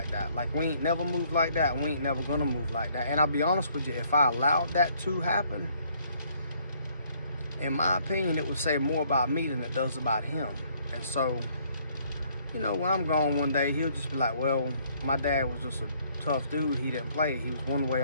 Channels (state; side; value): inverted; both; correlation -0.65